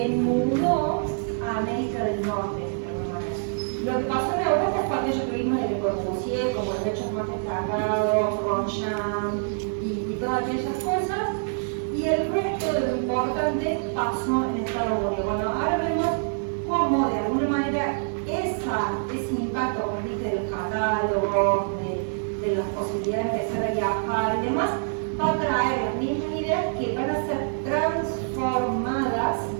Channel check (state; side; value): silent; left; 56 dB below the other